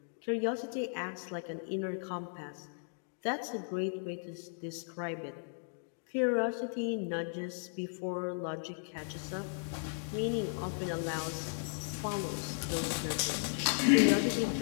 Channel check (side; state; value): right; silent; digital silence